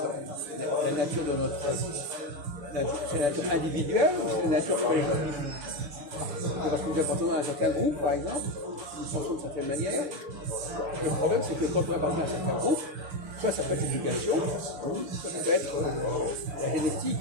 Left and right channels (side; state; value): left; late; 6.9 ms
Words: nature de notre... C'est la nature individuelle ou c'est la nature collective? Parce que nous appartenons à un certain groupe, par exemple, nous pensons d'une certaine manière. Le problème, c'est que quand on appartient à un certain groupe, soit ça peut être l'éducation, soit ça peut être la génétique,